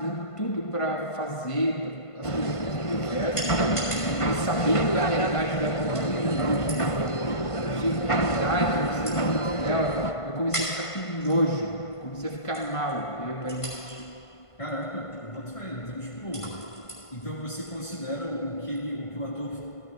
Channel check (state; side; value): late; right; 1.5 ms